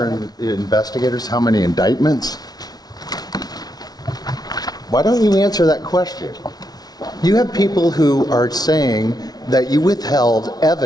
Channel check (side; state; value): right; late; 0.19 ms